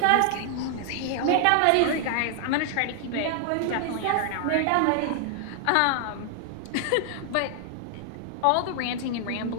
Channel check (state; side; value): different; both; correlation 0.00